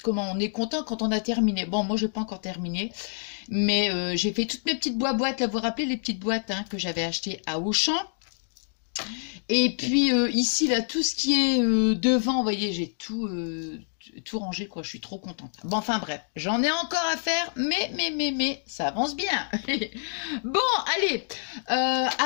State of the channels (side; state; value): right; silent; digital silence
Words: content quand on a terminé. Bon, moi, j'ai pas encore terminé, mais j'ai fait toutes mes petites boîtes. Là, vous vous rappelez les petites boîtes que j'avais achetées à Auchan. Et puis ici, là, tout ce qui est devant, vous voyez, j'ai tout rangé, quoi. Je suis trop contente. Bon, enfin bref, j'en ai encore à faire, mais, ça avance bien. Bon, allez,